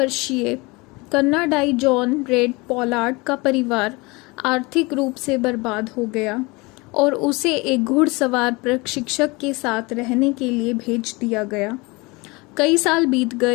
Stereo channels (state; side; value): quieter; right; 25.3 dB